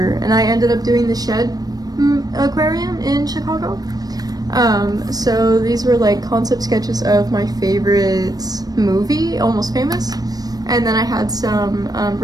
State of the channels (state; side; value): late; left; 0.19 ms